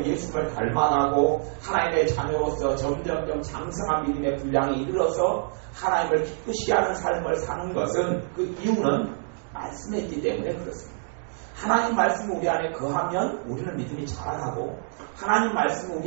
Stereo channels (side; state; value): left; silent; 61 dB below the other